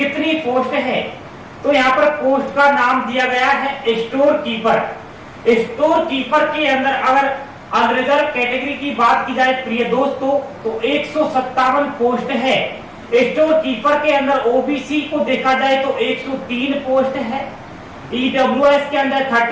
पोस्ट है। तो यहाँ पर पोस्ट का नाम दिया गया है स्टोर कीपर। स्टोर कीपर के अंदर अगर अनरिजर्व कैटेगरी की बात की जाए प्रिय दोस्तों तो 157 पोस्ट है। स्टोर कीपर के अंदर OBC को देखा जाए तो 103 पोस्ट है। EWS के अंदर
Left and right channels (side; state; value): both; identical; correlation 1.00